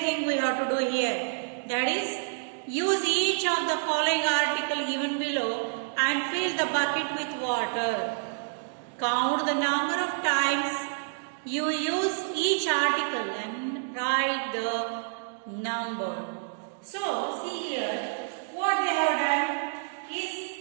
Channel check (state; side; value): silent; left; digital silence